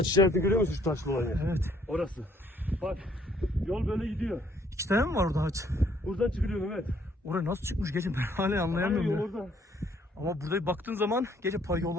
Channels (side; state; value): both; normal; correlation 0.64